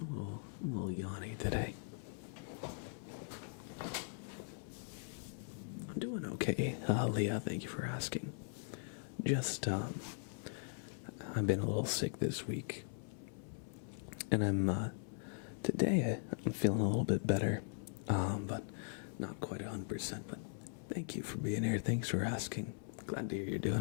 a little yawny today. I'm doing okay, Leah. Thank you for asking. Just, I've been a little sick this week, and today I'm feeling a little bit better, but not quite 100%. But thank you for being here. Thanks for asking. Glad to hear you're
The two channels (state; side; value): silent; right; 51 dB below the other